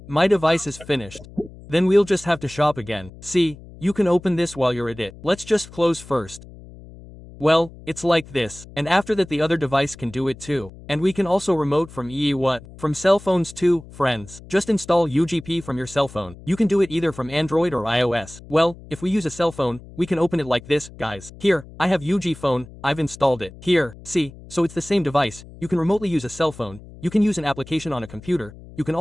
my device is finished. Then we'll just have to shop again. See, you can open this while you're at it. Let's just close first. Well, it's like this, and after that the other device can do it too. And we can also remote from from cell phones too, friends. Just install UGP from your cell phone. You can do it either from Android or iOS. Well, if we use a cell phone, we can open it like this, guys. Here, I have UgPhone, I've installed it. Here, see, so it's the same device. You can remotely use a cell phone. You can use an application on a computer. You can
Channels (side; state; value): left; noise; hum, 18 dB below the sound